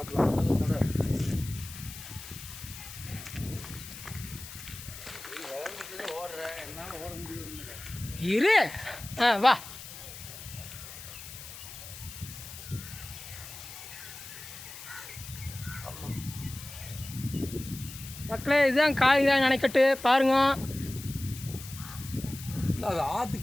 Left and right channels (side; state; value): left; noise; hiss, 13 dB below the sound